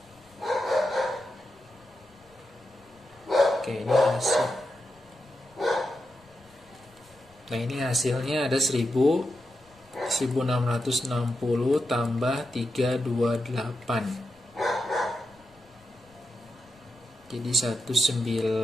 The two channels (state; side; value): noise; left; rumble, 30 dB below the sound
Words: Oke, ini hasil. Nah, ini hasilnya ada 1660 tambah 328. Jadi